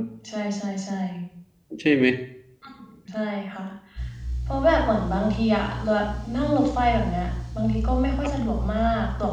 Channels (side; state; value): both; identical; correlation 1.00